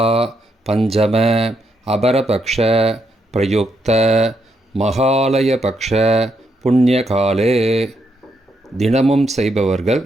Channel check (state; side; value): normal; both; correlation 0.79